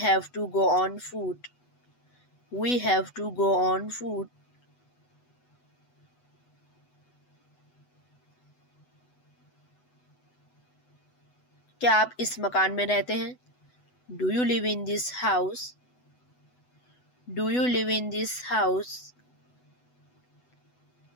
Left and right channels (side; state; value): right; late; 8.1 ms